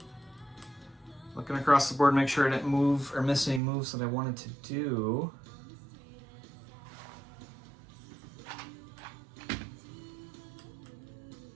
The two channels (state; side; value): drops out; left; at 3.6 s